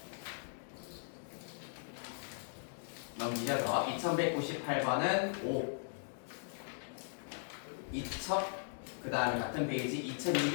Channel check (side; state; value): right; silent; digital silence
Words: 넘기셔서 2198번은 5 그 다음에 같은 페이지